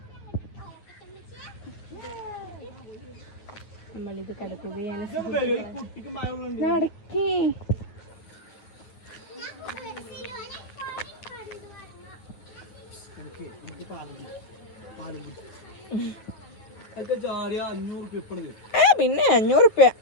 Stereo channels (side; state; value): right; late; 9.6 ms